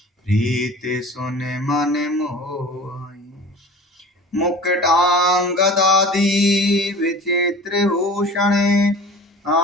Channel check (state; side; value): normal; both; correlation 0.40